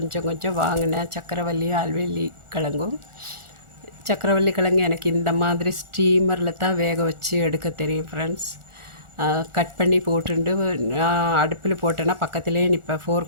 கொஞ்சம் வாங்கினேன். சக்கரவள்ளி ஆல்வெள்ளி கிழங்கும். சக்கரவள்ளி கிழங்கு எனக்கு இந்த மாதிரி ஸ்டீமரில் தான் வேக வச்சு எடுக்க தெரியும் ஃப்ரெண்ட்ஸ். கட் பண்ணி போட்டுண்டு நான் அடுப்பில் போட்டேன்னா பக்கத்துலேயே நிற்பேன்.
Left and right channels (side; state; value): left; late; 1.4 ms